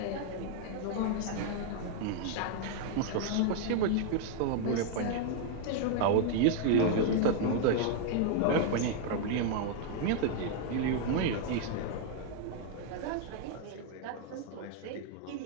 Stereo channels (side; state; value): both; different; correlation 0.00